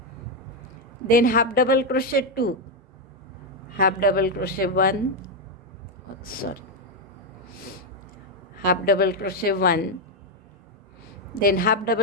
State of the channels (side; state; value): both; normal; correlation 0.04